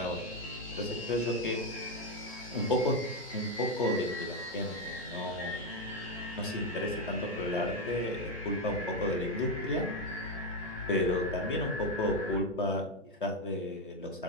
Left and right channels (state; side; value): normal; both; correlation 0.07